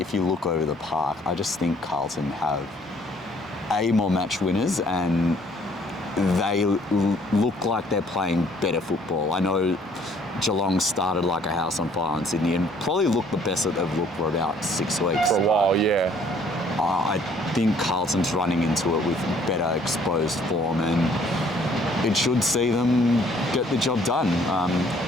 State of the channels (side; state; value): both; normal; correlation 0.61